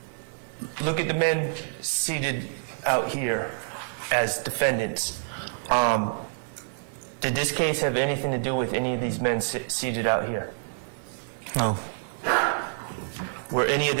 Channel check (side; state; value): left; silent; digital silence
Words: Look at the men seated out here as defendants. Did this case have anything to do with any of these men seated out here? No. Were any of